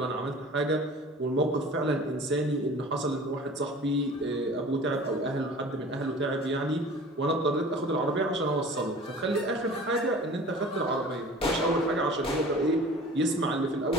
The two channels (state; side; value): normal; both; correlation 0.43